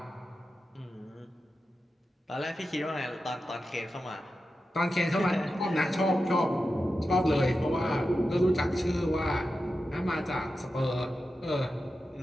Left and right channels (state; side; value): normal; both; correlation 0.91